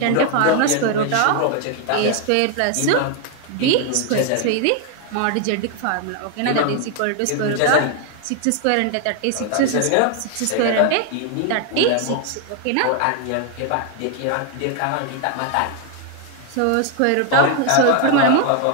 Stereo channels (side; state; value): both; different; correlation 0.00